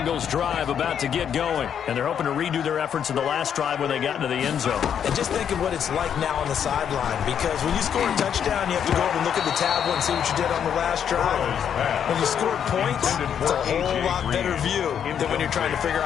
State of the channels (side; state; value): right; quieter; 8.5 dB